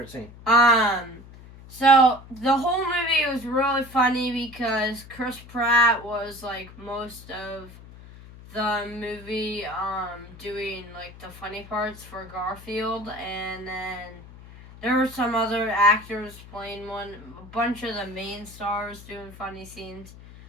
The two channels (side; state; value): left; noise; hum, 18 dB below the sound